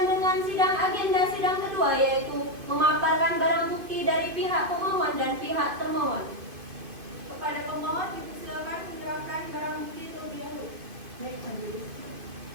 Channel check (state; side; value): late; left; 2.5 ms